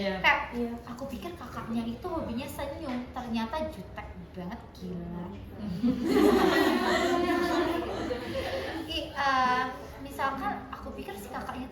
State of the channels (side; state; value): both; identical; correlation 1.00